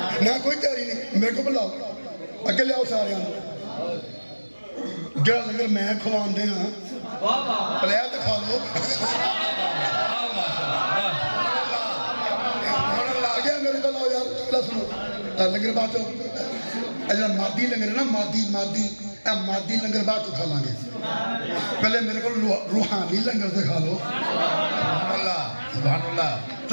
نہ کوئی تیاری نہیں، میرے کو بلاؤ، اگے لے آؤ سارے ہیں، جڑا لنگر میں کھوان دے ہاں، پلیا تو کھا لو، آگے میرے کو لاؤ یار، چکلا سنو، لنگر بات ہو، اجلا مادی لنگر ہے نا، مادی لنگر بعد تو کھا لیں گے، پہلے میرے کو روحانی لنگر سے کھا لو، سبحان اللہ، سبحان اللہ،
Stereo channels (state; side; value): inverted; both; correlation -1.00